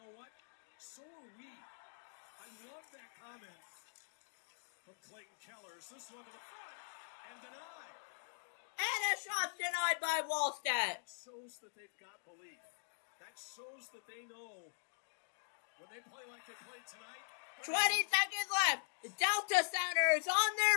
what? So are we. I love that comment from Clayton Keller. Is this one to the front and denied? And a shot denied by Wallstedt. That shows that they've got belief. That shows that they know when they play like they played tonight. 20 seconds left. The Delta Center is on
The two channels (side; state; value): right; silent; digital silence